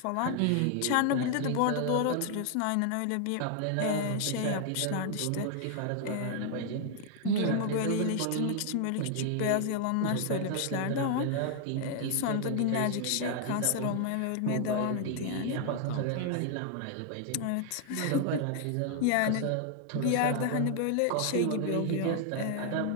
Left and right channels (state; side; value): different; both; correlation 0.00